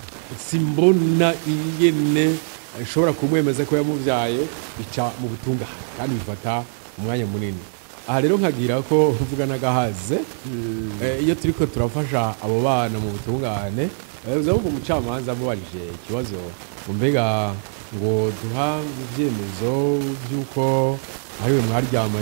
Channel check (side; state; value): left; silent; digital silence